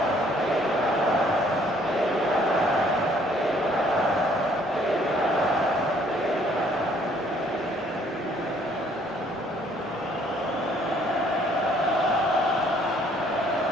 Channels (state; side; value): normal; both; correlation 0.62